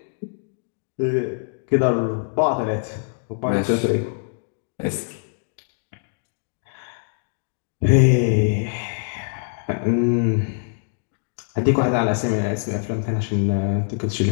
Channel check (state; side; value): silent; right; digital silence